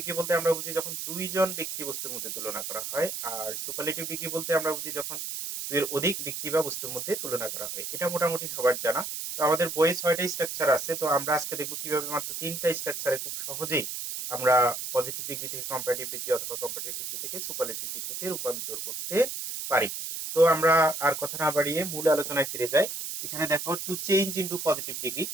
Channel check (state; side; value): noise; right; hiss, 5 dB below the sound